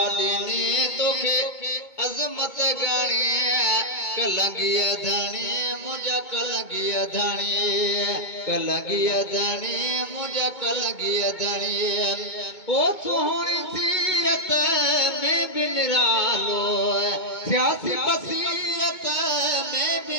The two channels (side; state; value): right; late; 2.2 ms